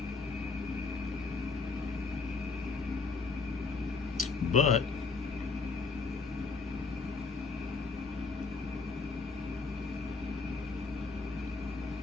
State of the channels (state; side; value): quieter; right; 4.4 dB